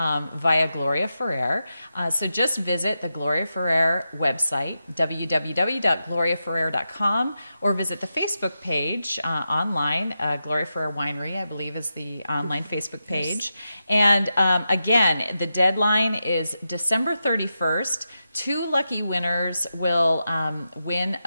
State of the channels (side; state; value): both; inverted; correlation -0.88